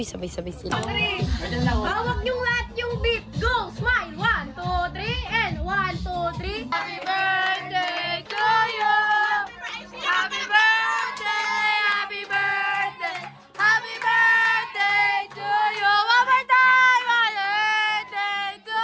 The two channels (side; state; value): both; identical; correlation 1.00